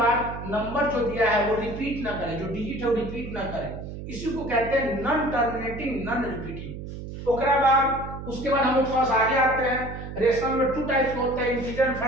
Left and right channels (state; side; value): noise; right; hum, 9 dB below the sound